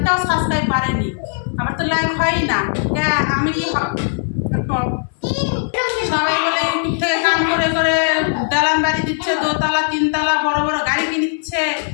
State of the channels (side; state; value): right; silent; 57 dB below the other